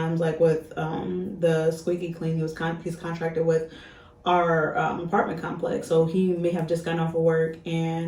like with the squeaky clean, he's contracted with our apartment complex, so he may have just gotten off of work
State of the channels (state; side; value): identical; both; correlation 1.00